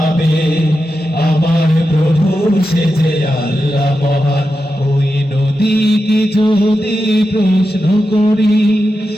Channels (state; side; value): normal; both; correlation 0.90